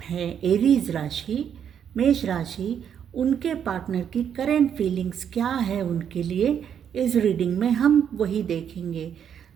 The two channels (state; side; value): quieter; left; 8.5 dB